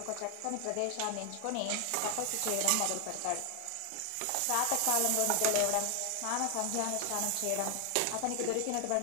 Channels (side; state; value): both; different; correlation 0.00